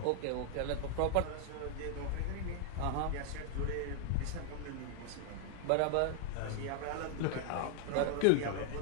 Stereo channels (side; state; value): both; different; correlation 0.00